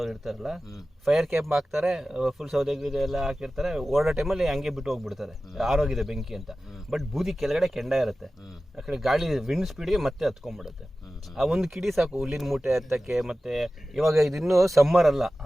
ಇರ್ತಾರಲ್ಲ, ಫೈರ್ ಕ್ಯಾಂಪ್ ಹಾಕ್ತಾರೆ, ಫುಲ್ ಸೌದೆ ಎಲ್ಲ ಹಾಕಿರ್ತಾರೆ, ಓಡೋ ಟೈಮಲ್ಲಿ ಹಂಗೆ ಬಿಟ್ಟು ಹೋಗ್ಬಿಡ್ತಾರೆ, ಆರೋಗಿದೆ ಬೆಂಕಿ ಅಂತ. ಬಟ್ ಬೂದಿ ಕೆಳಗಡೆ ಕೆಂಡ ಇರುತ್ತೆ, ಆ ಕಡೆ ಗಾಳಿ ವಿಂಡ್ ಸ್ಪೀಡ್ಗೆ ಮತ್ತೆ ಹತ್ಕೊಂಡ್ಬಿಡುತ್ತೆ. ಆ ಒಂದು ಕಿಡಿ ಸಾಕು ಹುಲ್ಲಿನ ಮೂಟೆ ಹತ್ತಕ್ಕೆ. ಮತ್ತೆ ಇವಾಗ ಇದಿನ್ನೂ ಸಮ್ಮರ್ ಅಲ್ಲ,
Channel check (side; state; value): both; normal; correlation 0.95